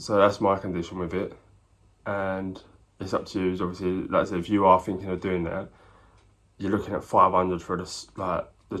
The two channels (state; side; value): identical; both; correlation 1.00